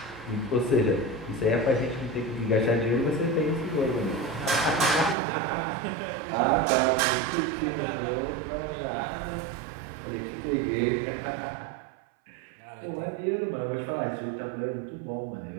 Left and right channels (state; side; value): drops out; left; at 5.2 s